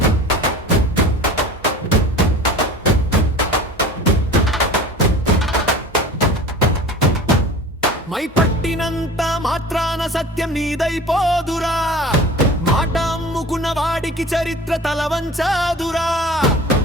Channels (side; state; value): both; normal; correlation 0.40